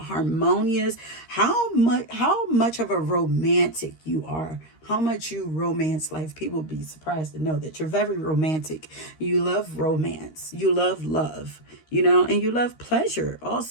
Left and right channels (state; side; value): late; right; 13 ms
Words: how much of a romantic you are. How much you romance life. People will be surprised to know that you're very romantic. You love romance. You love love, and you love pleasure